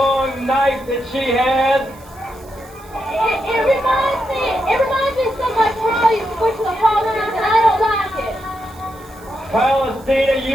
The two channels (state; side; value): noise; right; hiss, 25 dB below the sound